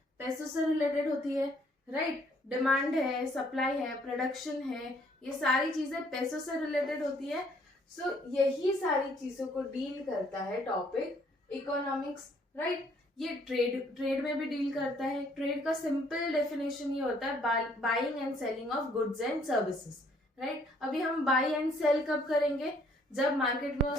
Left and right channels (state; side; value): normal; both; correlation 0.64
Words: पैसों से रिलेटेड होती है। राइट, डिमांड है, सप्लाई है, प्रोडक्शन है, ये सारी चीजें पैसों से रिलेटेड होती है। सो यही सारी चीजों को डील करता है टॉपिक इकोनॉमिक्स। राइट, ये ट्रेड में भी डील करता है। ट्रेड का सिंपल डेफिनेशन ये होता है buying and selling of goods and services. Right, अभी हम बाई एंड सेल कब करेंगे? जब मार्केट में